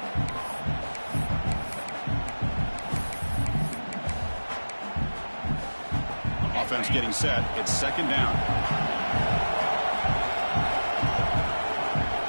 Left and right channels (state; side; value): inverted; both; correlation -1.00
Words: Offense getting set. It's 2nd down.